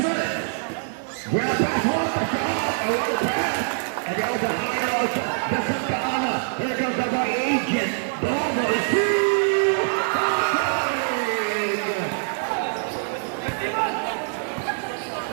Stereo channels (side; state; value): left; silent; 58 dB below the other